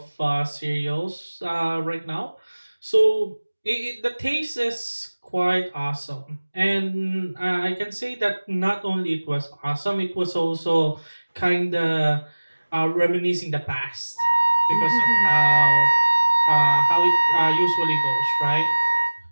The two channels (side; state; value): both; inverted; correlation -1.00